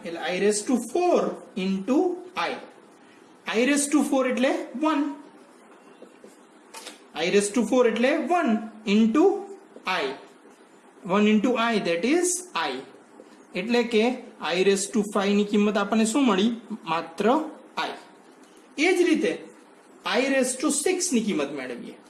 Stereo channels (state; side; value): identical; both; correlation 1.00